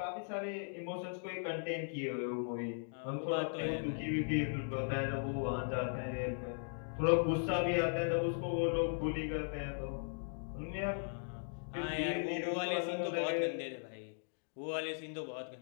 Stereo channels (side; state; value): right; silent; digital silence